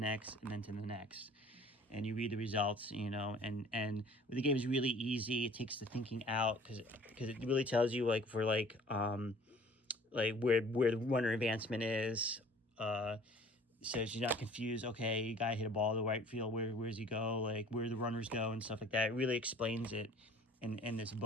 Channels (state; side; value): normal; both; correlation 0.50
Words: and then to the next, and you read the results, you know. And the game is really easy. It takes the thinking out because it really tells you like for like where the runner advancement is. So you're not confused. Okay, guy hit a ball to the right field. Where does he go? Like where the runners go and stuff like that. It really explains it in this